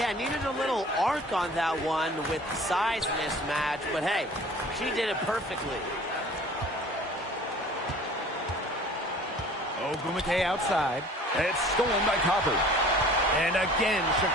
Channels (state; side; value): normal; both; correlation 0.47